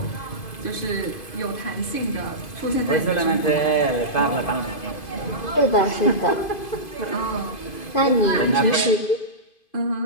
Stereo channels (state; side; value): late; right; 2.5 ms